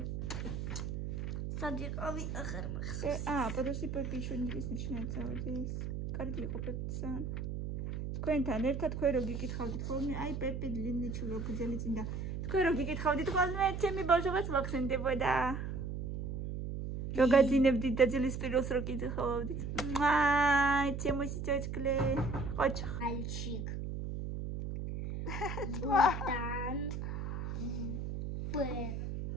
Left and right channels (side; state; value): right; noise; hum, 4 dB below the sound